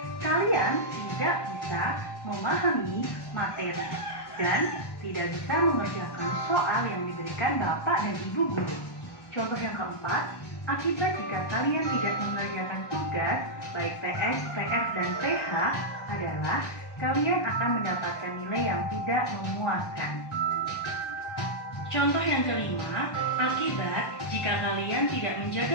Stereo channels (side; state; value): right; late; 1.1 ms